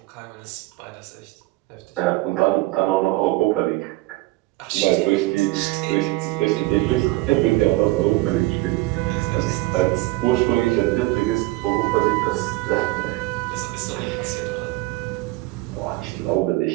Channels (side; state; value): left; quieter; 20.2 dB